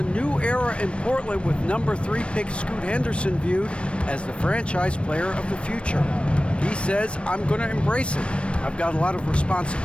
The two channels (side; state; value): right; late; 0.059 ms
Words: new era in Portland with number 3 pick Scoot Henderson viewed as the franchise player of the future. He says, I'm going to embrace it. I've got a lot of